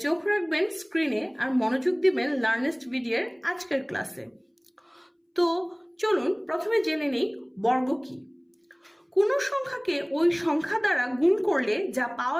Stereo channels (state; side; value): identical; both; correlation 1.00